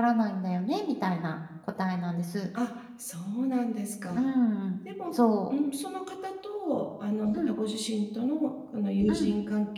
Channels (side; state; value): both; identical; correlation 1.00